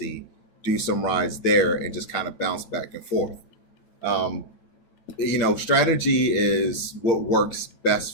do some rides there and just kind of bounce back and forth. Um, Strategy is what works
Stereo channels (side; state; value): right; late; 8.9 ms